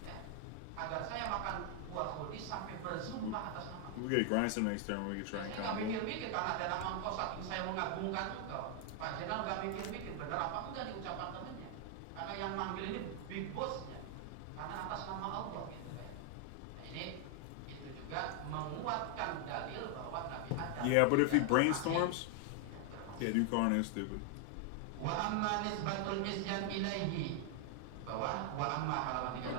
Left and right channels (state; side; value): different; both; correlation 0.00